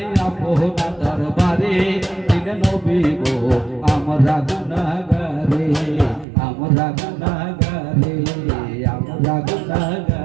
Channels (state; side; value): drops out; left; at 6.2 s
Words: আপনার দরবারে দিন নবী গো আমরা গুনাহগারে আমরা গুনাহগারে আমরা